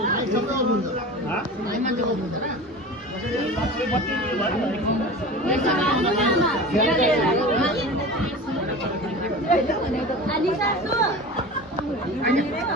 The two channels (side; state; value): both; normal; correlation 0.34